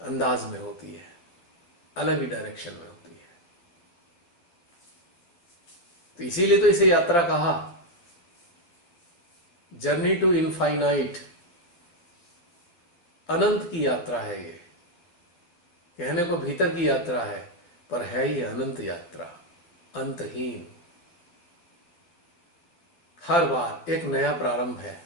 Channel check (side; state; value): right; late; 12 ms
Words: अंदाज में होती है, अलग ही डायरेक्शन में होती है। तो इसीलिए तो इसे यात्रा कहा, जर्नी टू इनफाइनाइट, अनंत की यात्रा है ये। कहने को भीतर की यात्रा है, पर है ये अनंत यात्रा, अंतहीन। हर बार एक नया प्रारंभ है